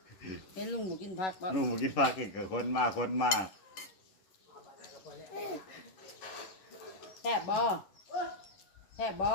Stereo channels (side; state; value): right; late; 11 ms